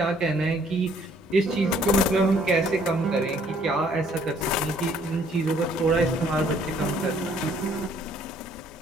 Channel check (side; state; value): both; normal; correlation 0.62